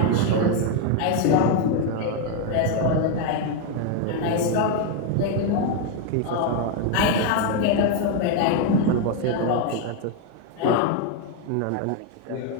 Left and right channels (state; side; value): different; both; correlation 0.01